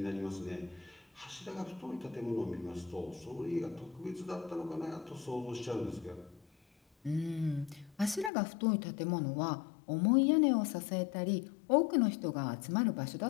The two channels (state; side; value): drops out; right; at 8.3 s